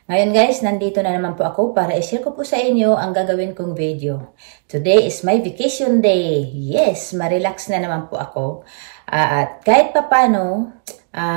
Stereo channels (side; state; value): left; silent; digital silence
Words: Ngayon guys, nandito na naman po ako para i-share ko po sa inyo ang gagawin kong video. Today is my vacation day. Yes, ma-relax na naman po ako. At kahit papano,